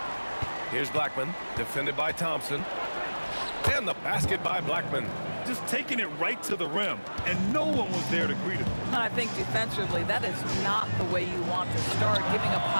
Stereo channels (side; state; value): both; inverted; correlation -1.00